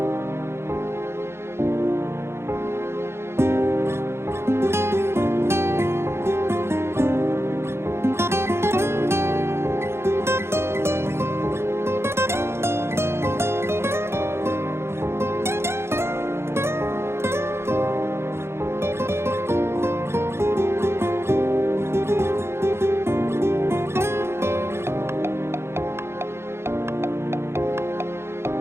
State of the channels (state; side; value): late; left; 0.12 ms